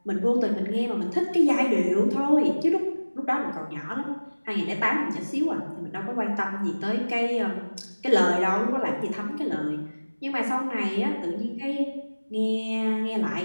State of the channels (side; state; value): both; inverted; correlation -1.00